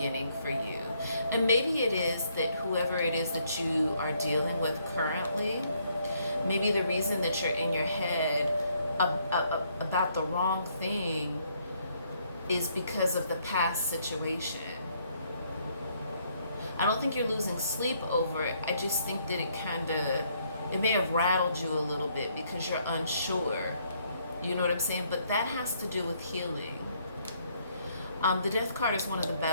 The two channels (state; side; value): inverted; both; correlation -0.70